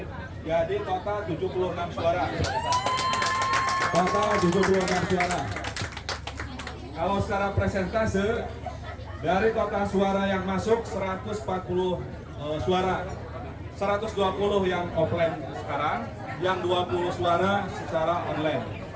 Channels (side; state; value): both; identical; correlation 1.00